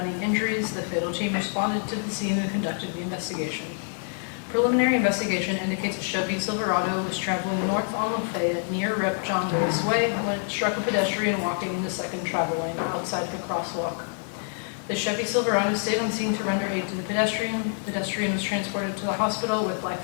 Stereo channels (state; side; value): silent; right; 56 dB below the other